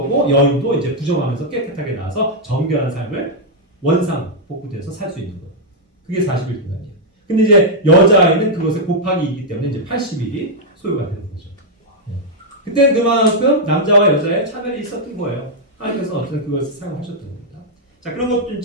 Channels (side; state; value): both; normal; correlation -0.04